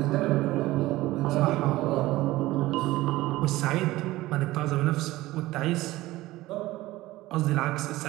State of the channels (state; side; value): quieter; left; 17.6 dB